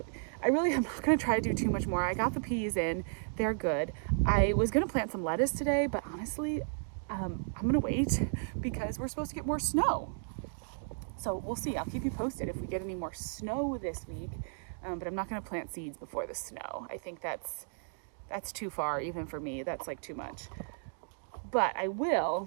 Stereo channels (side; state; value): left; silent; digital silence